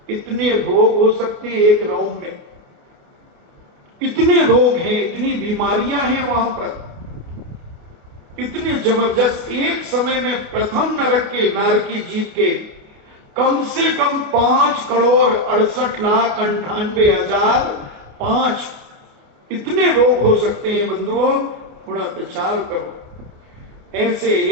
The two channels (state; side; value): late; left; 28 ms